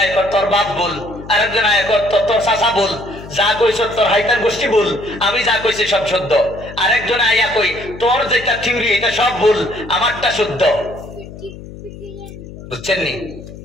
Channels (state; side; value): noise; left; hum, 14 dB below the sound